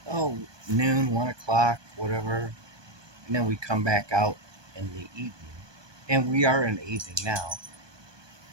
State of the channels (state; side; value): late; left; 1.2 ms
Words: oh noon, 1 o'clock, whatever, and then we come back out in the evening, and we are in the evening now.